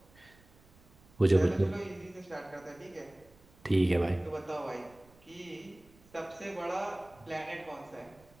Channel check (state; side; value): noise; right; rumble, 27 dB below the sound